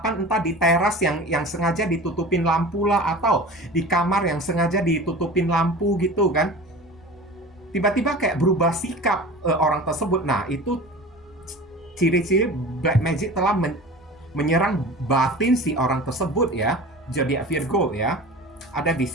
entah di teras yang sengaja ditutupin lampu lah, atau di kamar yang sengaja ditutupin lampu gitu kan. Tiba-tiba kayak berubah sikap orang tersebut. Nah, itu ciri-ciri Black Magic telah menyerang batin si orang tersebut ya. Zodiak Virgo ya. Ada di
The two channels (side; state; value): both; normal; correlation 0.37